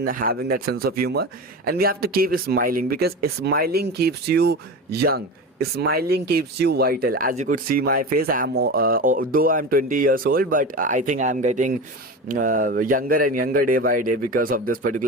having that sense of humor, and we have to keep smiling, because smiling keeps you young, smiling keeps you vital. As you could see my face, though I'm 20 years old, but I think I'm getting younger and younger day by day because of this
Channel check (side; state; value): both; normal; correlation 0.27